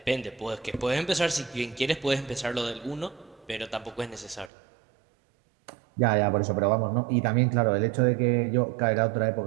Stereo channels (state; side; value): drops out; left; at 4.5 s